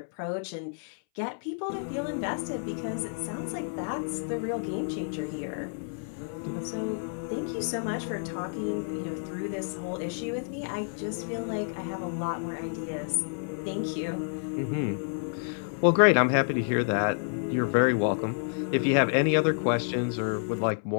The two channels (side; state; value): right; silent; 58 dB below the other